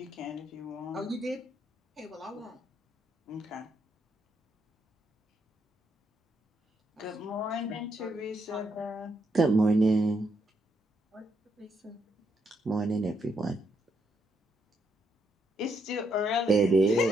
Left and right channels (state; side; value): normal; both; correlation 0.77